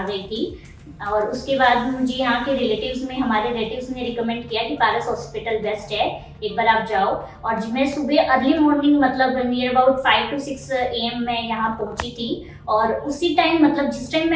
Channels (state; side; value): identical; both; correlation 1.00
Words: गई थी। और उसके बाद मुझे यहाँ के हमारे रिलेटिव्स ने रिकमेंड किया कि पारस हॉस्पिटल बेस्ट है, एक बार आप जाओ। और मैं सुबह अर्ली मॉर्निंग मतलब नियर अबाउट 5 to 6 AM मैं यहाँ पहुँची थी। और उसी टाइम मतलब जिस टाइम